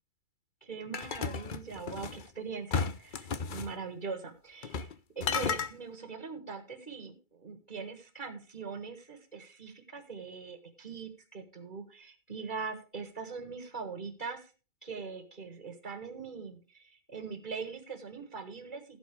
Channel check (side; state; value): right; late; 2.3 ms